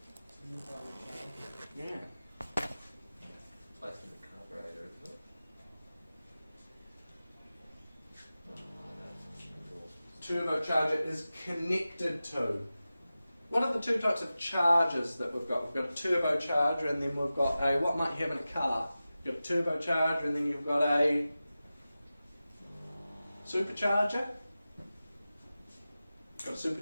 Yeah. Placed in the carburetor, isn't it? Turbocharger is connected to. What are the two types of charges that we've got? We've got a turbocharger, and then we've got a, what might you have in a car? You've got a turbocharger, and then you've got a supercharger. You've got a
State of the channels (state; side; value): inverted; both; correlation -0.95